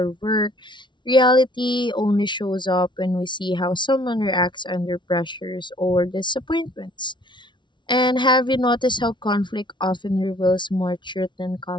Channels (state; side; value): late; right; 0.23 ms